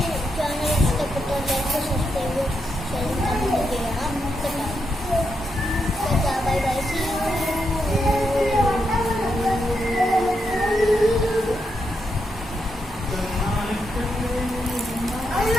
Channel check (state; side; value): normal; both; correlation 0.82